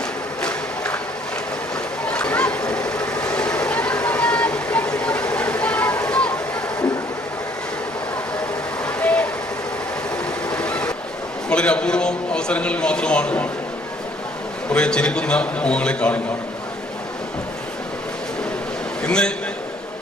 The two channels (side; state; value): both; normal; correlation 0.62